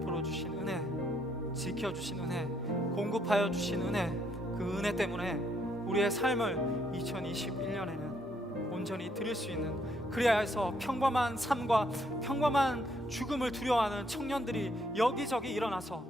주신 은혜, 지켜주신 은혜, 공급하여 주신 은혜, 그 은혜 때문에 우리의 삶을 2021년에는 온전히 드릴 수 있는 그래야 해서 평범한 삶과 평범한 죽음을 두려워하는 청년들이 여기저기 일어나서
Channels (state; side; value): normal; both; correlation 0.71